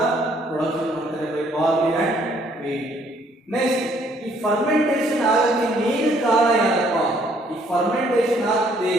ಪ್ರೊಡಕ್ಷನ್ ಮಾಡ್ತಾರೆ by barley and wheat. Next, ಈ ಫರ್ಮೆಂಟೇಷನ್ ಆಗಕ್ಕೆ ಮೇನ್ ಕಾರಣ ಏನಪ್ಪ? ಈ ಫರ್ಮೆಂಟೇಷನ್ ಆಗ್ತದೆ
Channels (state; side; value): normal; both; correlation 0.64